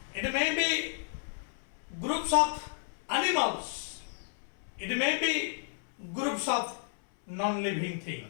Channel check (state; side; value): silent; right; 56 dB below the other